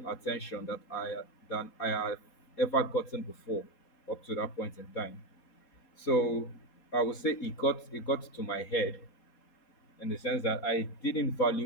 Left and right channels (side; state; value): right; late; 4.2 ms